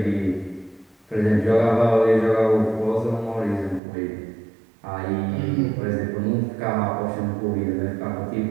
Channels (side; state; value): left; drops out; at 3.8 s